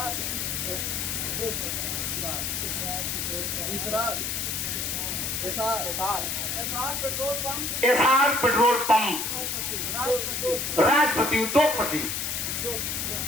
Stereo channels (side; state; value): left; noise; hiss, 1 dB below the sound